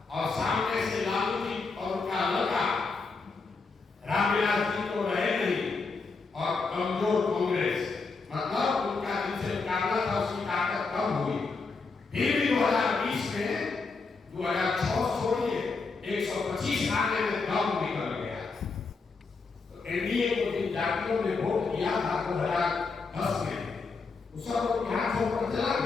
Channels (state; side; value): quieter; right; 4.4 dB